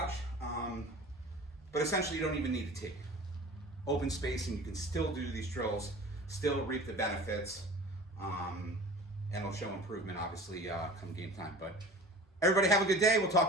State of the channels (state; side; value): normal; both; correlation 0.40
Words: But essentially, you don't even need a tee. Open space, and you can still do these drills, still reap the benefits, and it'll show improvement, obviously, come game time. But everybody have a good day. We'll talk